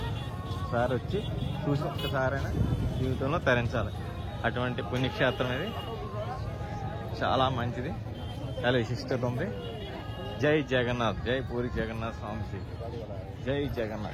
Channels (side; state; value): both; identical; correlation 1.00